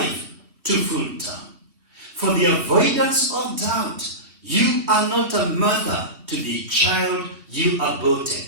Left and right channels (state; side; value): late; left; 2.9 ms